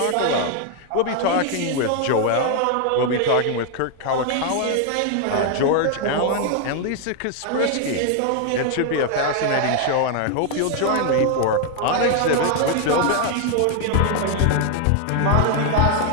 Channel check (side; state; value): both; different; correlation 0.00